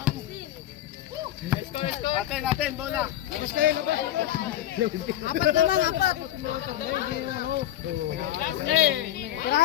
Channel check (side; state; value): right; quieter; 12.8 dB